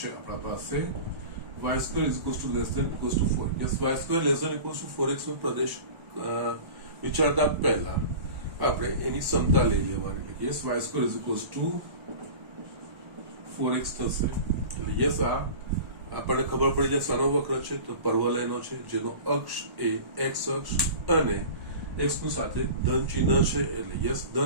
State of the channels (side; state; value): left; late; 1.1 ms